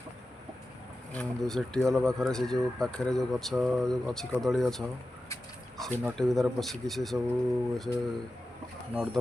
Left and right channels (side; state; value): both; normal; correlation 0.93